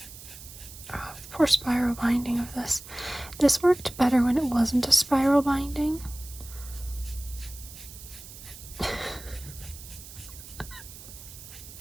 poor spiral binding of this. This worked better when it wasn't a spiral binding.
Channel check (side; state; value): right; noise; hiss, 15 dB below the sound